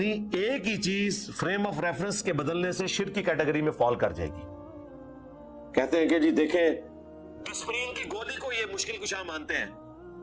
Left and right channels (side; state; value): both; identical; correlation 1.00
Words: ایک ہی چیز فریم آف ریفرنس کے بدلنے سے شرک کی کیٹیگری میں فال کر جائے گی۔ کہتے ہیں کہ جی دیکھیں ڈسپرین کی گولی کو یہ مشکل کشا مانتے ہیں،